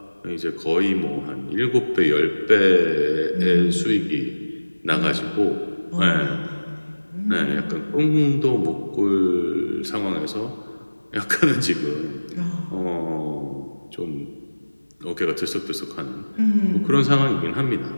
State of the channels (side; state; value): both; inverted; correlation -1.00